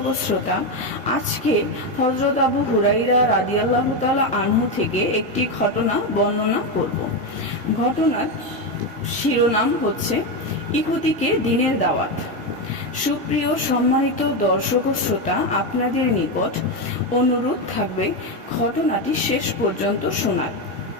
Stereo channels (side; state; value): both; normal; correlation 0.10